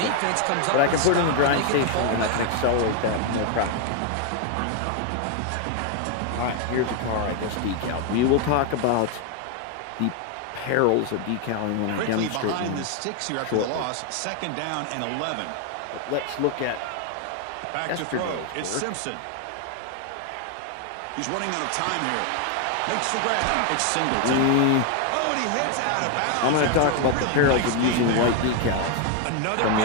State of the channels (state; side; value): different; both; correlation 0.01